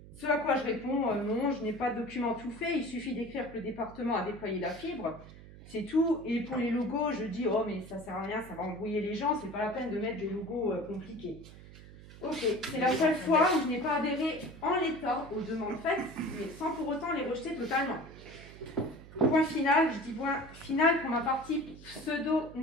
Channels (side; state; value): right; noise; hum, 18 dB below the sound